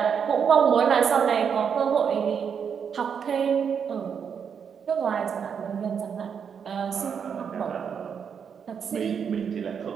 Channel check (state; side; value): quieter; left; 7.1 dB